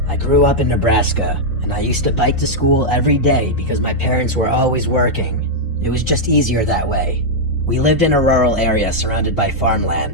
I grew up in Nebraska, and I used to bike to school every day because my parents were always working. It was just easier that way. We lived in a rural area surrounded by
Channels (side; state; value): both; normal; correlation -0.04